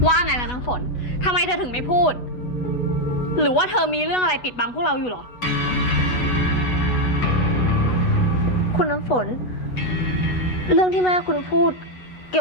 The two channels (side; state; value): right; late; 8.1 ms